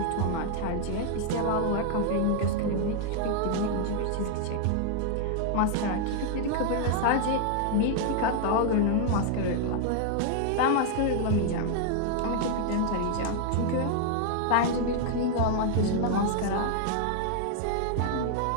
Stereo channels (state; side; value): different; both; correlation 0.00